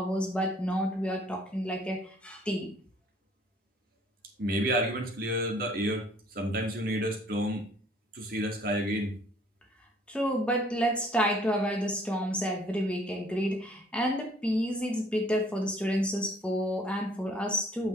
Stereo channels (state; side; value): normal; both; correlation 0.58